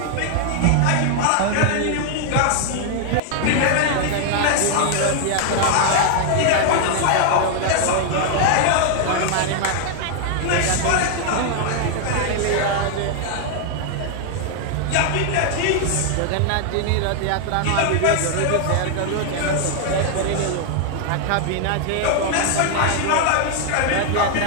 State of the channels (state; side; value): different; both; correlation 0.00